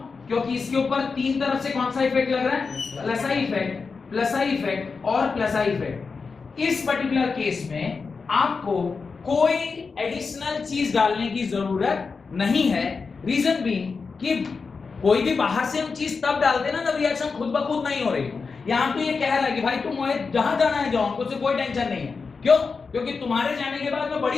क्योंकि इसके ऊपर तीन तरफ से कौन सा इफेक्ट लग रहा है? Plus I effect, plus I effect और प्लस आई इफेक्ट। इस पर्टिकुलर केस में आपको कोई एडिशनल चीज डालने की जरूरत नहीं है। रीजन बीइंग कि कोई भी बाहर से हम चीज तब डालते ना जब रिएक्शन खुद ब खुद नहीं हो रही। यहां तो ये कह रहा है कि भाई तुम जहां जाना है जाओ, हमको से कोई टेंशन नहीं है। क्यों? क्योंकि तुम्हारे जाने के बाद मैं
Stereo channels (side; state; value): right; quieter; 4.8 dB